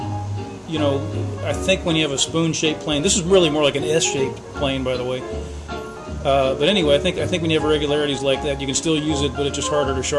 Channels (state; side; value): identical; both; correlation 1.00